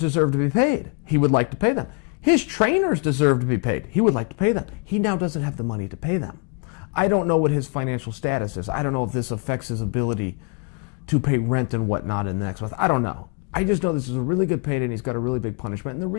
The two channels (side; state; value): right; quieter; 34.9 dB